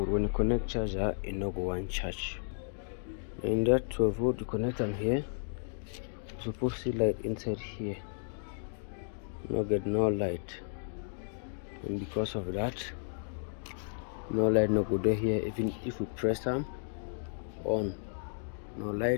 when you connect charger, it no go one charge. In that 12 volt, you connect them here. You supposed to see light inside here. No get no light, and because of that, no light no go there here. Even if we press them on, no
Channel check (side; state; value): right; silent; digital silence